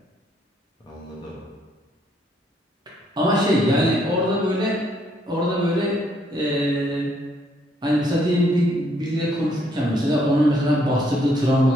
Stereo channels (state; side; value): normal; both; correlation 0.69